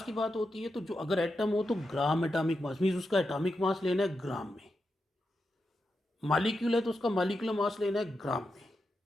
की बात होती है तो जो अगर एटम हो तो ग्राम एटॉमिक मास, मीन्स उसका एटॉमिक मास लेना है ग्राम में। मालिक्यूल है तो उसका मालिकुलर मास लेना है ग्राम में।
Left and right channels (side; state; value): both; normal; correlation 0.87